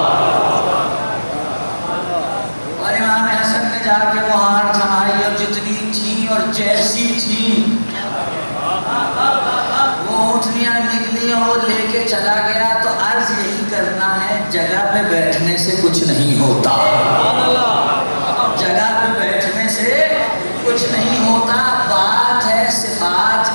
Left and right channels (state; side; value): inverted; both; correlation -1.00